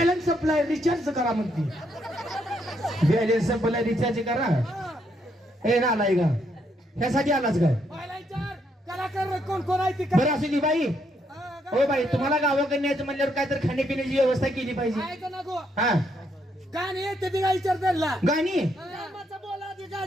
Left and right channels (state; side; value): normal; both; correlation 0.75